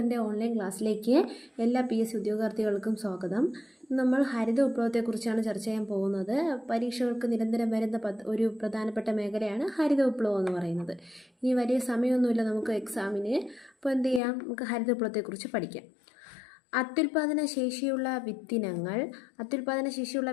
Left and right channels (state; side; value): drops out; right; at 14.2 s